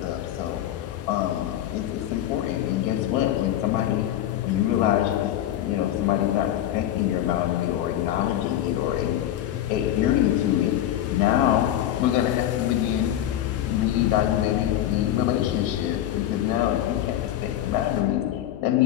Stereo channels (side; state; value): right; quieter; 12.1 dB